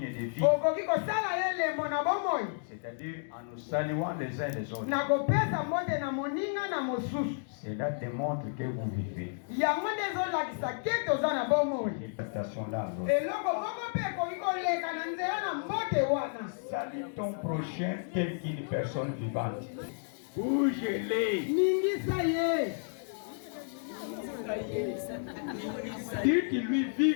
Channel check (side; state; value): right; silent; digital silence